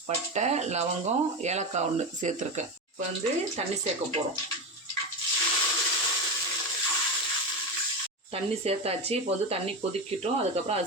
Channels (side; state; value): both; normal; correlation 0.18